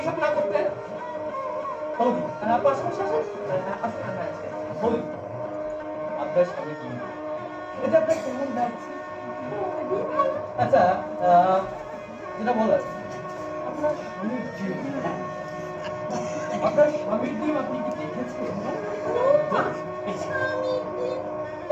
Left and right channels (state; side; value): identical; both; correlation 1.00